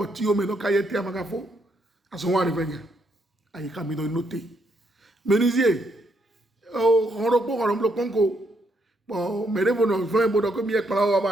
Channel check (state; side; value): normal; both; correlation 0.75